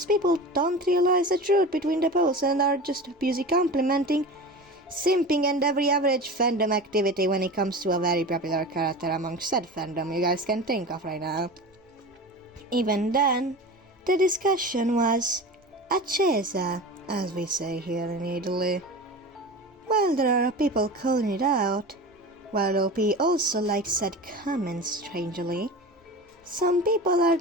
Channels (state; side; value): normal; both; correlation 0.31